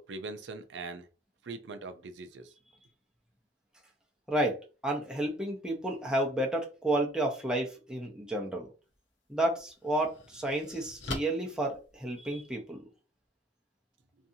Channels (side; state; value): both; normal; correlation 0.58